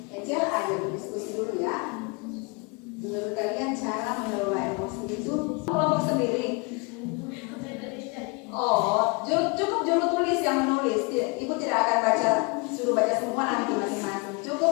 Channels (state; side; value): quieter; right; 30.4 dB